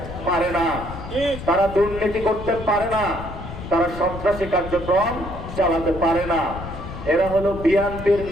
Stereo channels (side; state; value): left; noise; rumble, 10 dB below the sound